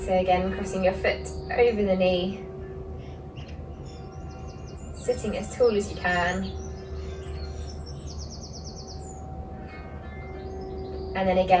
So again, crossing your foot over the knee, sitting as tall as you can. And then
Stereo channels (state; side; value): identical; both; correlation 1.00